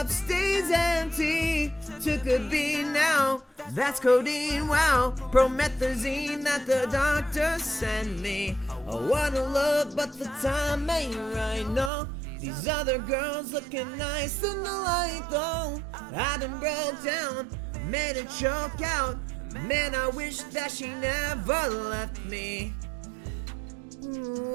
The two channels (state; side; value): drops out; left; at 11.9 s